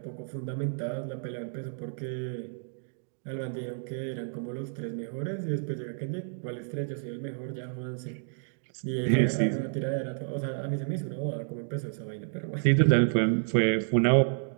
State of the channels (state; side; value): silent; left; digital silence